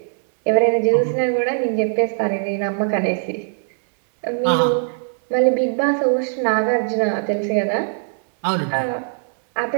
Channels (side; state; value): left; silent; 66 dB below the other